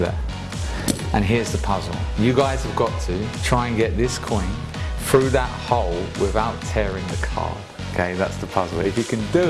And here's the puzzle. You guys have got to try and get this coin through that hole without tearing the card. Okay, that's the puzzle. If you can do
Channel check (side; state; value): both; identical; correlation 1.00